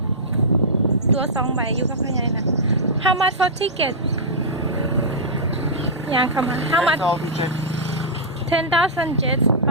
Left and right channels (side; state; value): both; normal; correlation -0.12